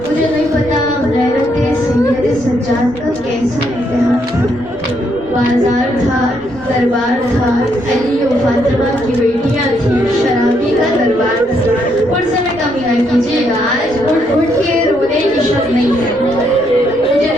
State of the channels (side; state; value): left; noise; rumble, 23 dB below the sound